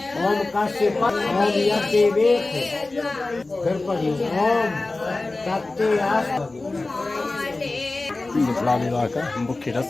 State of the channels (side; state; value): right; quieter; 3.2 dB